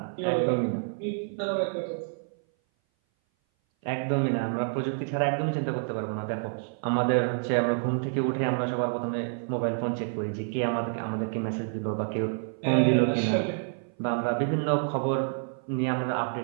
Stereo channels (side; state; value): left; silent; 57 dB below the other